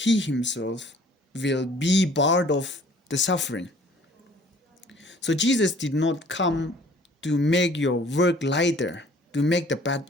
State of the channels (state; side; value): normal; both; correlation 0.54